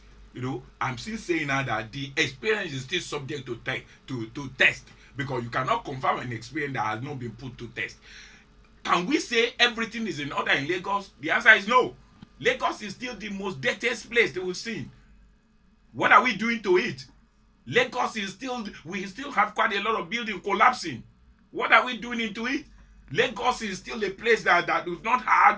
I'm still saying now that the experience is still subject to test, because you cannot confirm an experience that has not been put to test. Can we say everything is in order in Lagos? The answer is no. Lagos is still the most dirtiest place that we've seen. What are we doing to it? Lagos is still, we still have quite a lot of buildings collapsing. What are we doing into it? Lagos is still a place that we've not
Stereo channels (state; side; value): identical; both; correlation 1.00